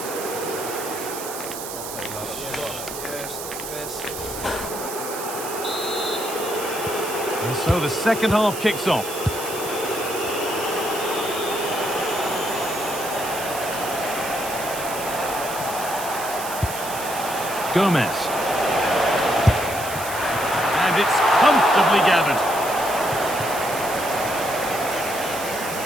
And so the second half kicks off. Gomez. And it's comfortably gathered.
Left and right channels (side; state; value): right; noise; hiss, 8 dB below the sound